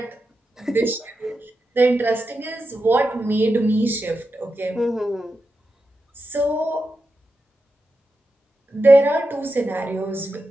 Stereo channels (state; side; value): normal; both; correlation 0.89